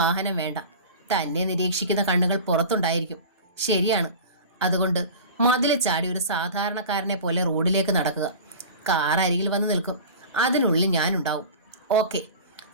വേണ്ട. തന്നെ നിരീക്ഷിക്കുന്ന കണ്ണുകൾ പുറത്തുണ്ടായിരിക്കും. ശരിയാണ്. അതുകൊണ്ട് മതിൽ ചാടി ഒരു സാധാരണക്കാരനെ പോലെ റോഡിലേക്ക് നടക്കുക. കാർ അരികിൽ വന്ന് നിൽക്കും. അതിനുള്ളിൽ ഞാനുണ്ടാവും. ഓക്കെ.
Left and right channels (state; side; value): inverted; both; correlation -0.36